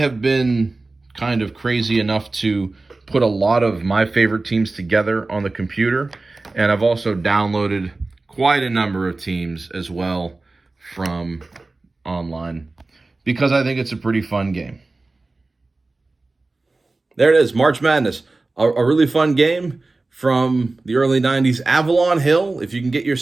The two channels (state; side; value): quieter; left; 3.3 dB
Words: been kind of crazy enough to put a lot of my favorite teams together on the computer, and I've also downloaded quite a number of teams as well from online because I think it's a pretty fun game. There it is, March Madness, a really fun game from the early 90s. Avalon Hill, if you can get